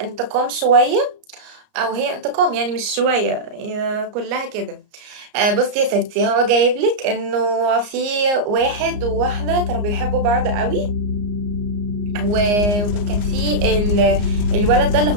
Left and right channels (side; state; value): left; late; 34 ms